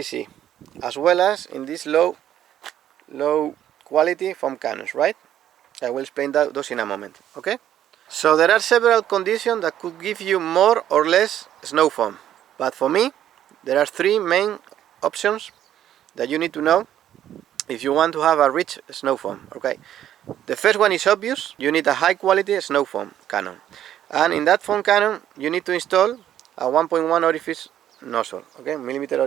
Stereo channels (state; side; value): quieter; left; 11.2 dB